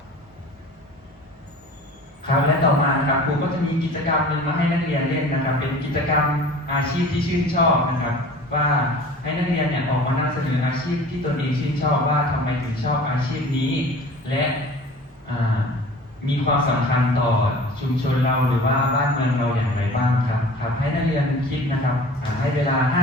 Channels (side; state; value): both; normal; correlation 0.43